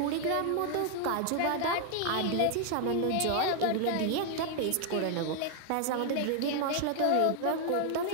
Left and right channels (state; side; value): different; both; correlation 0.00